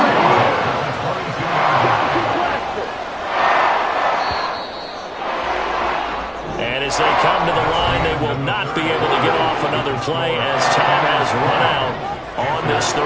And as they come to the line, they will not be able to get off another play as time has run out on this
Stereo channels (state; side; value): identical; both; correlation 1.00